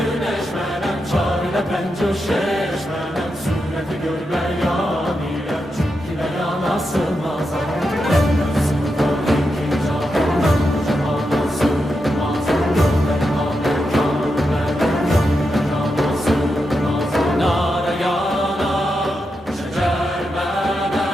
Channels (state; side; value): normal; both; correlation 0.86